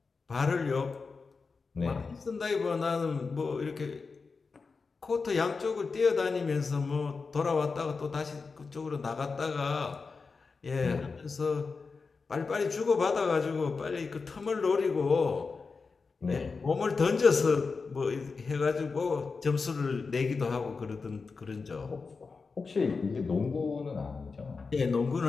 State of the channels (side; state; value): right; quieter; 4.6 dB